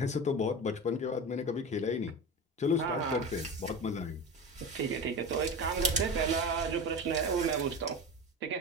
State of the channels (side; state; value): both; normal; correlation 0.28